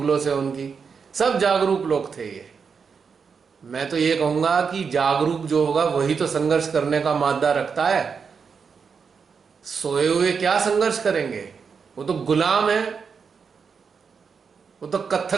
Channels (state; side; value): quieter; left; 5.9 dB